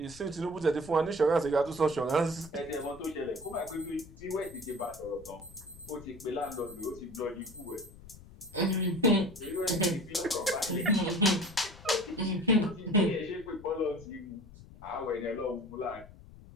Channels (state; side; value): noise; left; rumble, 19 dB below the sound